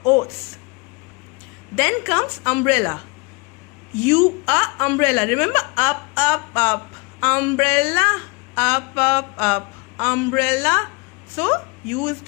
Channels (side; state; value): right; quieter; 29.3 dB